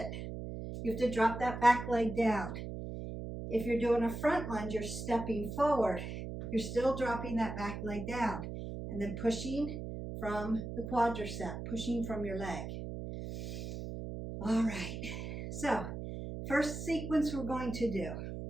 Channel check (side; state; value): right; noise; hum, 7 dB below the sound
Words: You have to drop that back leg down. If you're doing a front lunge, you're stepping forward. You're still dropping that back leg down and then pushing from the quadricep, pushing from your leg. All right. So first sequence we're going to do.